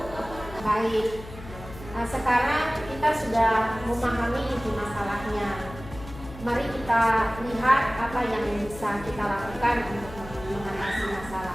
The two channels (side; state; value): left; noise; hum, 15 dB below the sound